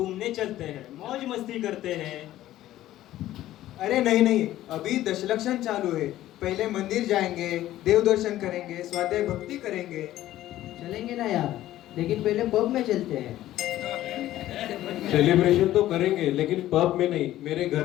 चलते हैं, मौज मस्ती करते हैं। अरे नहीं नहीं, अभी दशलक्षण चालू है। पहले मंदिर जाएंगे, देव दर्शन करेंगे, स्वाध्याय भक्ति करेंगे। चलेंगे ना यार, लेकिन पहले पब में चलते हैं। सेलिब्रेशन तो करेंगे लेकिन पब में नहीं, मेरे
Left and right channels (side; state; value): right; quieter; 14.1 dB